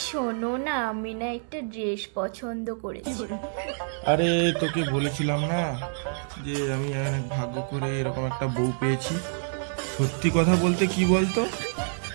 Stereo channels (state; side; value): silent; left; 60 dB below the other